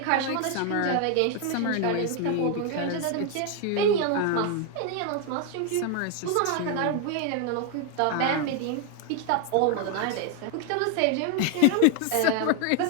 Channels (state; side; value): different; both; correlation 0.01